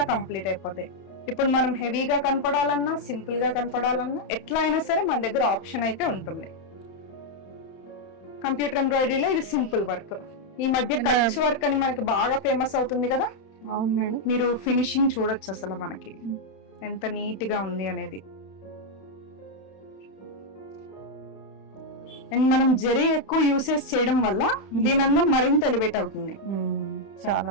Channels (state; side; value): late; right; 31 ms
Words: కంప్లీట్ అయిపోతాయి. ఇప్పుడు మనం హెవీగా కనపడాలన్నా, సింపుల్ గా కనపడాలన్నా ఎట్లా అయినా సరే మన దగ్గర ఆప్షన్ అయితే ఉంటుంది. కంప్యూటర్ ఎంబ్రాయిడరీలో ఇది సింపుల్ వర్క్. ఈ మధ్య కచ్ వర్క్ అని మనకి బాగా ఫేమస్ అవుతుంది కదా. అవును మేడం, మీరు ఫినిషింగ్ చూడొచ్చు అసలు మనకి ఎంత నీట్ గా ఉంది అనేది. అండ్ మనం జరీ ఎక్కువ యూసేజ్ చేయడం వల్ల దీని అందం మరింత ఎలివేట్ అవుతుంది. చాలా